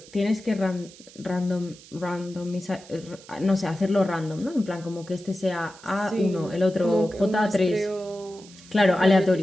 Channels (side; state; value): right; noise; hiss, 21 dB below the sound